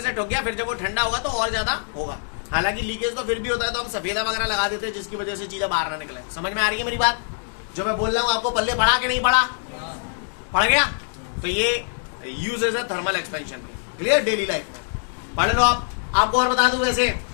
ठोक गया, फिर जब वो ठंडा होगा तो और ज्यादा होगा। हालांकि लीकेज तो फिर भी होता है, तो हम सफेदा वगैरह लगा देते हैं, जिसकी वजह से चीजें बाहर ना निकले। समझ में आ रही है मेरी बात? जो मैं बोल रहा हूँ आपको पल्ले पड़ा कि नहीं पड़ा? पड़ गया? तो ये यूजेस है थर्मल एक्सपेंशन के। क्लियर? डेली लाइफ में पढ़ लो आप। आपको और बता दूं, वैसे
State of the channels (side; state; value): right; silent; 63 dB below the other